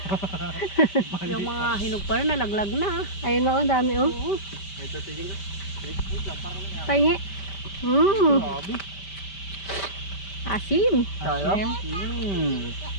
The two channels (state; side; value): late; right; 5.1 ms